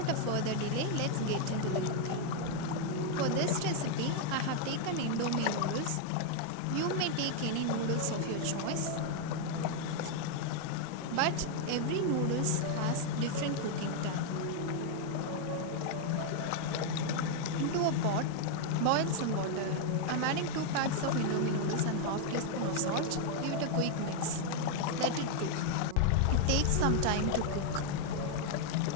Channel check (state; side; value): different; both; correlation 0.00